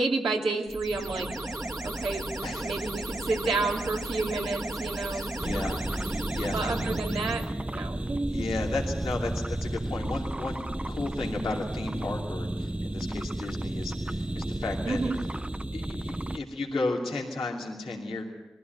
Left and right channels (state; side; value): normal; both; correlation 0.85